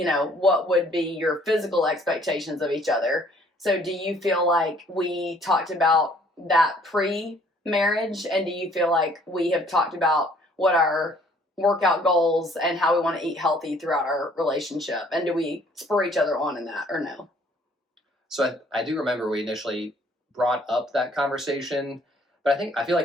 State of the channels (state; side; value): normal; both; correlation 0.60